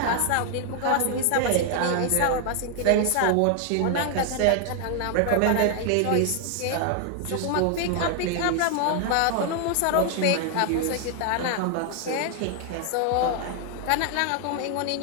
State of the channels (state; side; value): different; both; correlation 0.00